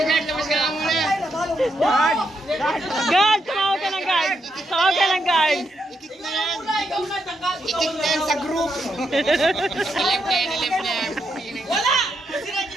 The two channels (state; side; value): normal; both; correlation 0.80